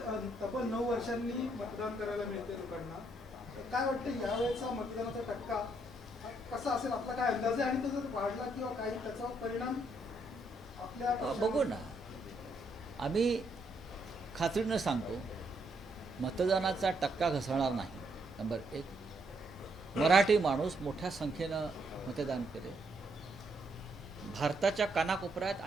तब्बल 9 वर्षांनी मतदान करायला मिळते लोकांना, तर काय वाटतं यावेळेचा मतदानाचा टक्का कसा असेल, आपला काय अंदाज आहे? आणि तो जर वाढला किंवा काही त्याचा परिणाम आपल्या बघू ना, आम्ही खात्रीनं सांगतो मतदानाचा टक्का घसरणार नाही. नंबर 1, मराठी माणूस मोठ्या संख्येनं मतदान करेल. भारताच्या कानाकोपऱ्यात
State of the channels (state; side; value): normal; both; correlation 0.74